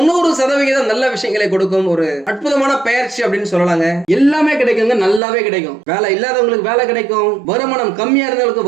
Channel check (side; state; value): left; drops out; at 5.2 s